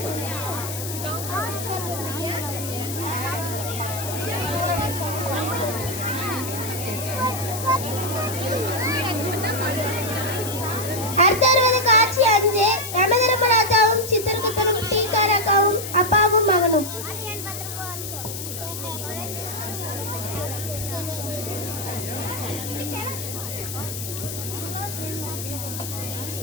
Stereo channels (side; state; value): left; noise; hiss, 7 dB below the sound